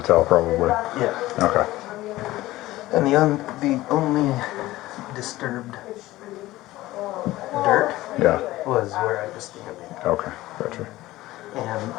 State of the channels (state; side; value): quieter; right; 17.1 dB